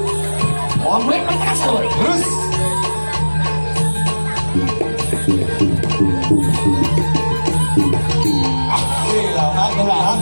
Omelet pakai asal. Terus.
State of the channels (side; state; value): both; inverted; correlation -1.00